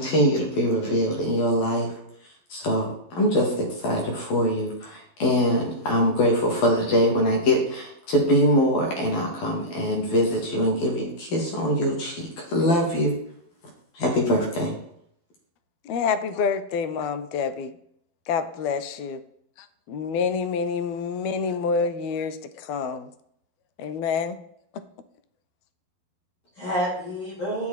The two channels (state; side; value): late; right; 12 ms